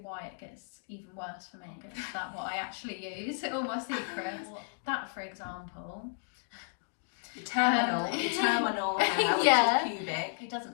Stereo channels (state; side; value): silent; right; 56 dB below the other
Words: why it gets even worse for me. Is that what I actually use? All my secrets. That, for example, the terminal hair, which is pubic. It doesn't